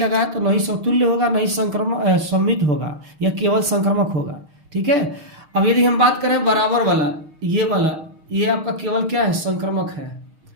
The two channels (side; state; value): left; late; 6.4 ms